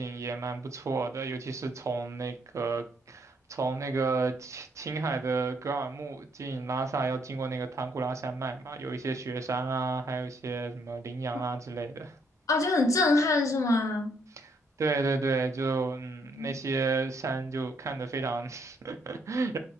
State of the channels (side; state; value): both; normal; correlation 0.71